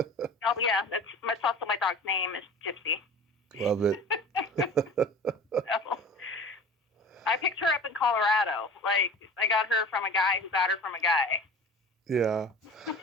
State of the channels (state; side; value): normal; both; correlation 0.39